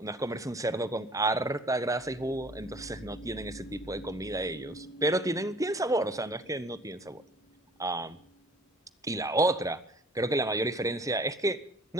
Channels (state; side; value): normal; both; correlation 0.50